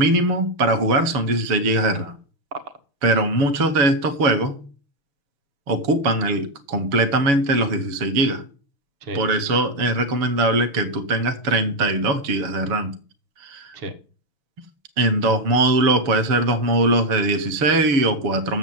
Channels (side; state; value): left; late; 7.0 ms